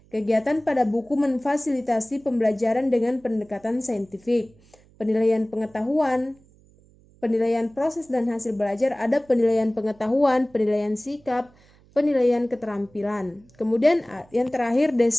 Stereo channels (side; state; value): right; noise; hum, 29 dB below the sound